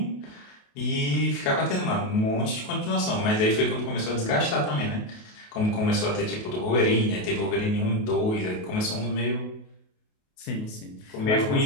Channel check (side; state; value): right; late; 28 ms